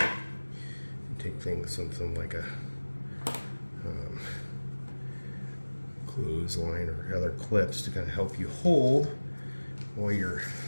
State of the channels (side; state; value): both; inverted; correlation -1.00